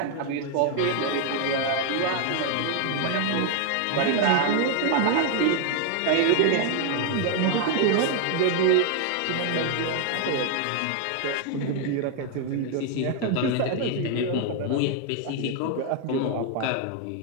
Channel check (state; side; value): different; both; correlation 0.00